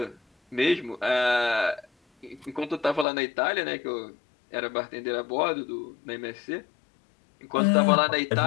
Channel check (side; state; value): right; drops out; at 3.1 s